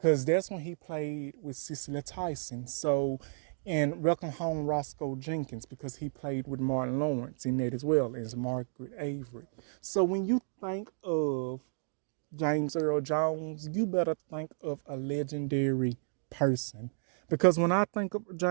that's when he played with Cicely Tyson. So And welcome home Roscoe Jenkins, because he played with Martin Lawrence in that as well as Margaret Avery. So when you think of James Earl Jones, you better think of a legendary person. Because when I think of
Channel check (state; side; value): silent; left; digital silence